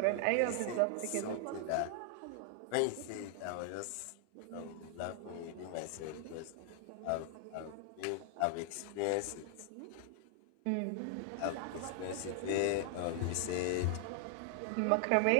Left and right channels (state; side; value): different; both; correlation 0.00